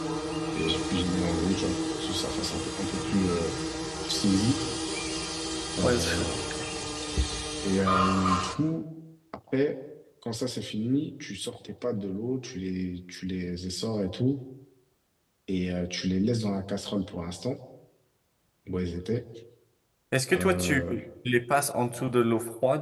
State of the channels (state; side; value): identical; both; correlation 1.00